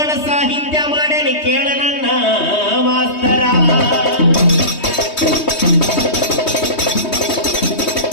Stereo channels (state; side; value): late; right; 3.2 ms